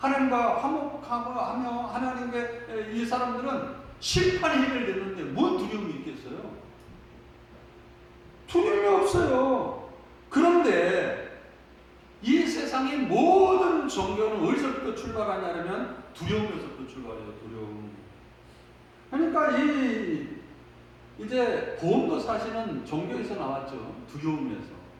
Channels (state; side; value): identical; both; correlation 1.00